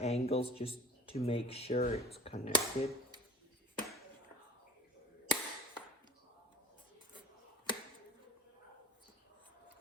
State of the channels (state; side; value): normal; both; correlation 0.43